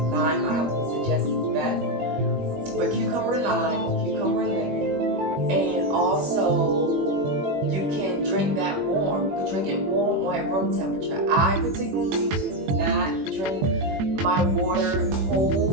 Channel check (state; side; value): late; left; 21 ms